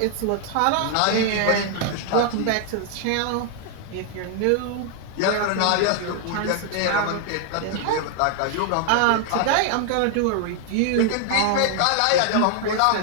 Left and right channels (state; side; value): different; both; correlation 0.00